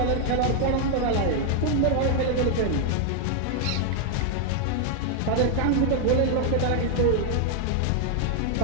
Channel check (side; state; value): both; different; correlation 0.00